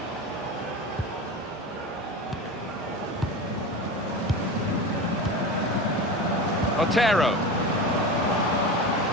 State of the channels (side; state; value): both; normal; correlation 0.27